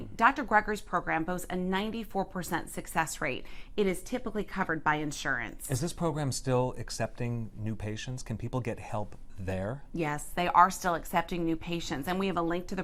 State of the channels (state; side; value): identical; both; correlation 1.00